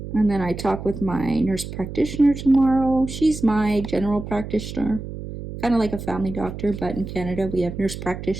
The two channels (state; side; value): noise; right; hum, 9 dB below the sound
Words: And then I talk with my nurse practitioner tomorrow. She's my general practitioner, kind of like a family doctor, but in Canada we have nurse